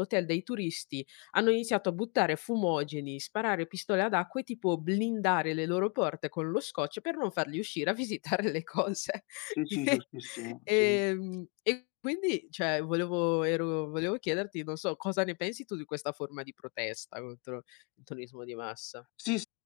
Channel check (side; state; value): right; quieter; 33.1 dB